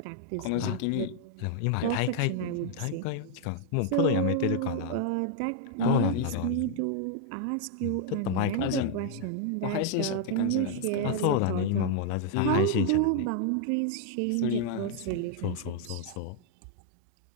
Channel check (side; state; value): both; different; correlation 0.00